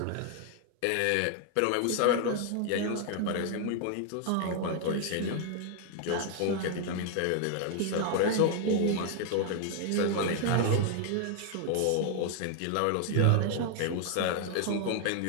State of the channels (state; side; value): different; both; correlation 0.00